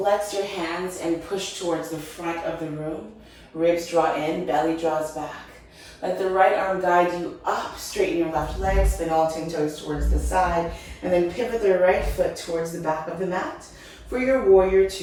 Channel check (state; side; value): identical; both; correlation 1.00